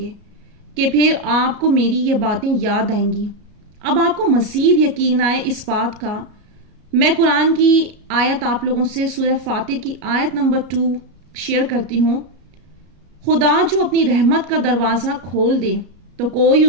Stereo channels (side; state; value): left; late; 33 ms